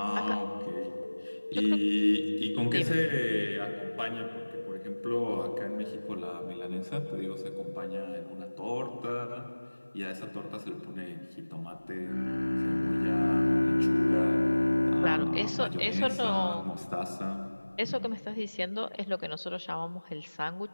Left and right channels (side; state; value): both; inverted; correlation -1.00